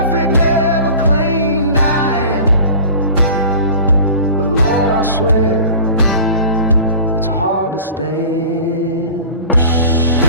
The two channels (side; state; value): both; inverted; correlation -0.40